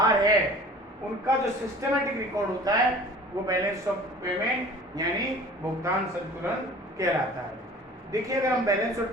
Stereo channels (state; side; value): normal; both; correlation 0.45